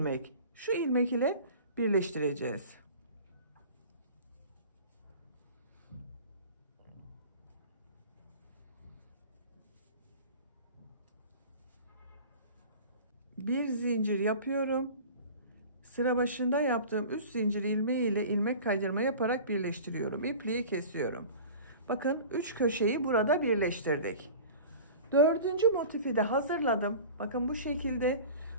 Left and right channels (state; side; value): inverted; both; correlation -0.39